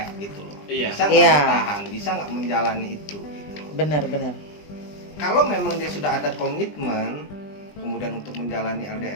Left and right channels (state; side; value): late; right; 20 ms